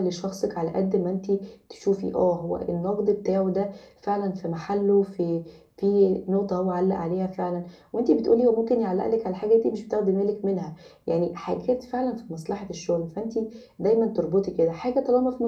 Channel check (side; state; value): both; identical; correlation 1.00